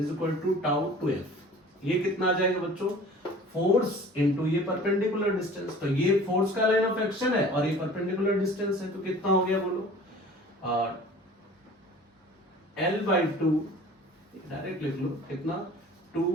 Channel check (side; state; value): both; normal; correlation 0.45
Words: equal to tau 2f। ये कितना आ जाएगा बच्चों, फोर्स इनटू ये परपेंडिकुलर डिस्टेंस। तो ये फोर्स का लाइन ऑफ एक्शन है और ये परपेंडिकुलर डिस्टेंस है, तो कितना हो गया बोलो, L/2, डायरेक्ट लिख लो कितना,